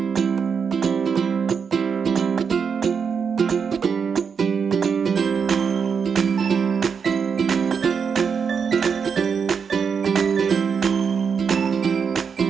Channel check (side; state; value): left; quieter; 6.3 dB